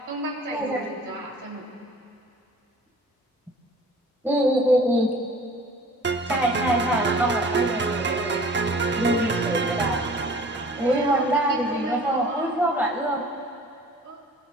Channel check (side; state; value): both; normal; correlation 0.47